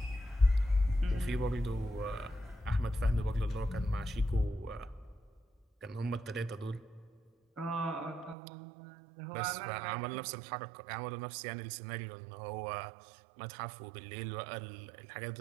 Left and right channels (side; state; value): left; drops out; at 8.3 s